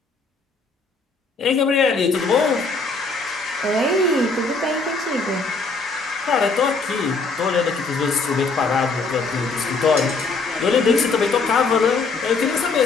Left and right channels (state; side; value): quieter; right; 4.0 dB